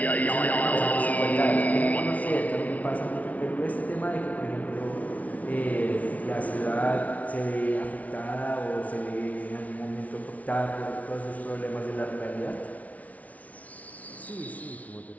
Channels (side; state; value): right; late; 0.070 ms